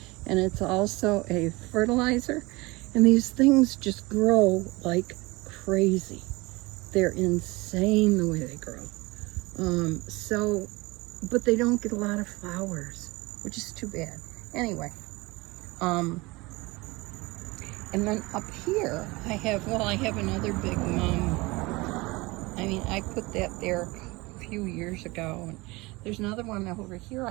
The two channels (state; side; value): quieter; left; 23.2 dB